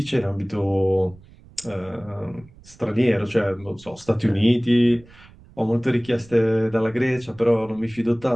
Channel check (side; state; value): right; noise; rumble, 24 dB below the sound